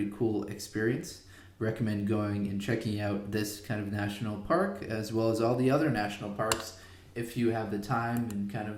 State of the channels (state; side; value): identical; both; correlation 1.00